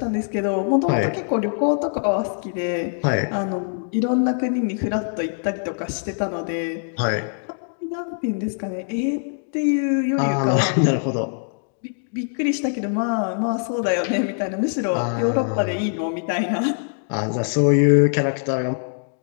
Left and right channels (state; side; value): silent; right; digital silence